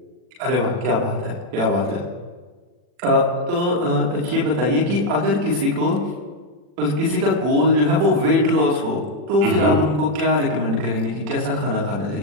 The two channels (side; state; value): left; late; 40 ms